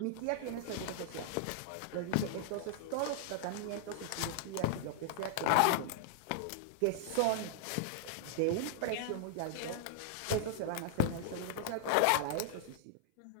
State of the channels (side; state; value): both; different; correlation -0.01